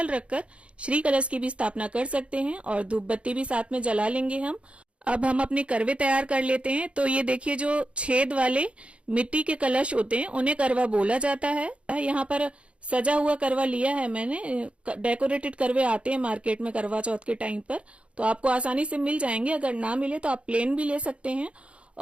रखकर श्री कलश की भी स्थापना कर सकते हैं और धूप बत्ती भी साथ में जला लेंगे हम। अब हम अपने करवे तैयार कर लेते हैं। तो ये देखिए, जो छेद वाले मिट्टी के कलश होते हैं उन्हें करवा बोला जाता है। यहाँ पर सजा हुआ करवा लिया है मैंने, डेकोरेटेड करवे आते हैं मार्केट में करवा चौथ के टाइम पर, तो आपको आसानी से मिल जाएंगे। अगर ना मिले तो आप प्लेन भी ले सकते हैं।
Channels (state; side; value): late; left; 0.060 ms